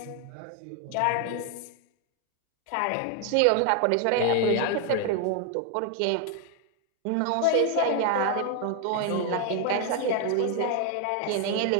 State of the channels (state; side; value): different; both; correlation 0.00